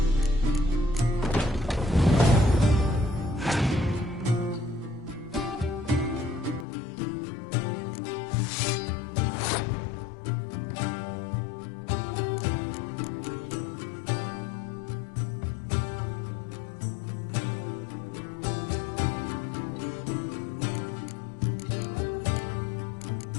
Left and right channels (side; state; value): right; drops out; at 6.7 s